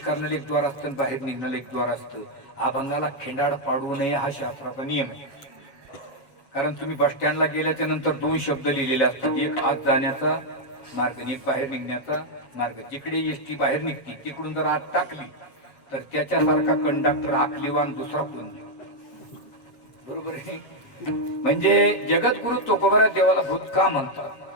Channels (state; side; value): late; right; 7.2 ms